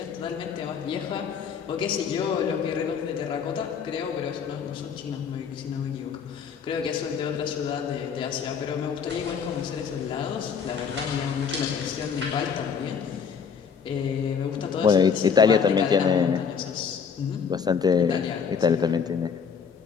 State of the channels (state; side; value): quieter; right; 6.6 dB